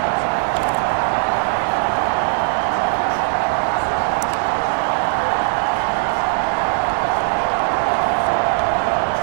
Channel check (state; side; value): silent; left; 58 dB below the other